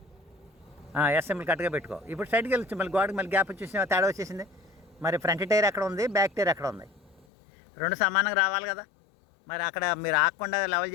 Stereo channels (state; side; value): drops out; right; at 7.2 s